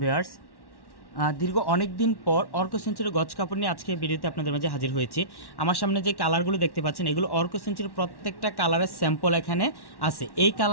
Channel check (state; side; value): late; right; 1.1 ms